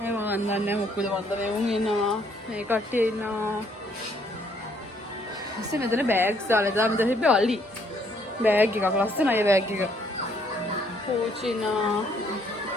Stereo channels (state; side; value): normal; both; correlation 0.67